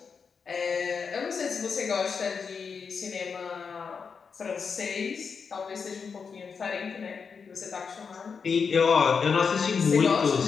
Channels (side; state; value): right; quieter; 5.8 dB